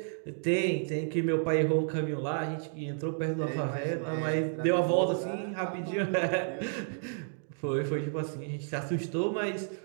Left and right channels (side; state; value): left; silent; digital silence